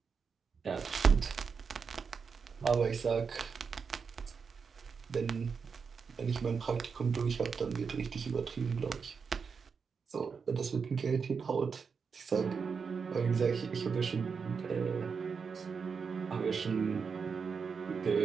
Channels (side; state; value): left; quieter; 5.7 dB